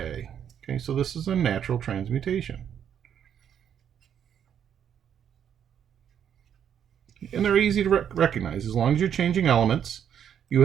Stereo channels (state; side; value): quieter; left; 8.9 dB